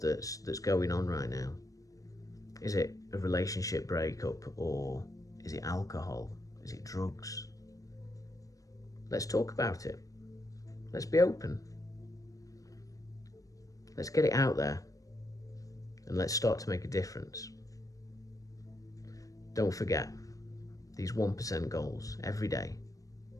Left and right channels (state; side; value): late; right; 0.16 ms